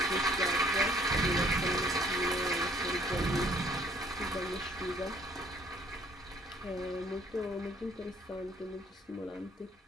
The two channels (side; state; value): both; normal; correlation 0.60